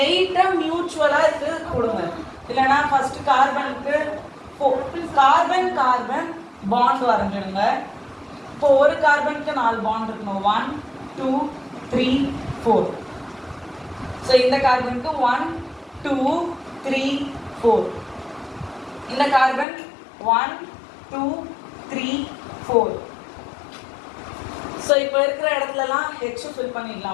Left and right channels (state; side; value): drops out; right; at 19.7 s